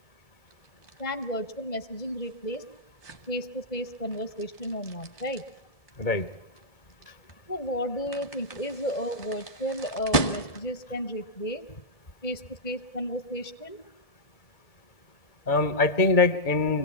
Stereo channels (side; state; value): right; late; 1.7 ms